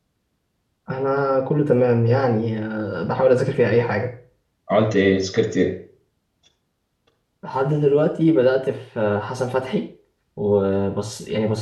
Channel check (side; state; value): both; identical; correlation 1.00